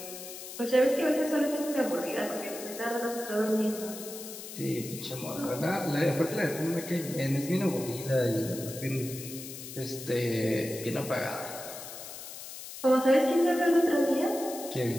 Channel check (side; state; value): left; noise; hiss, 11 dB below the sound